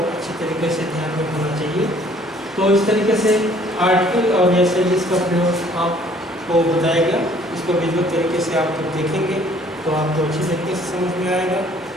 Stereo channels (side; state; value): both; normal; correlation 0.58